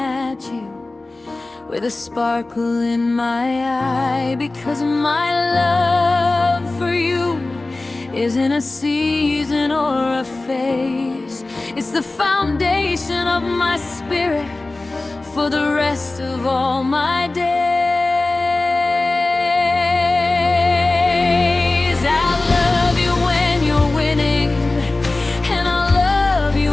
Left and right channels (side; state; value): right; quieter; 3.1 dB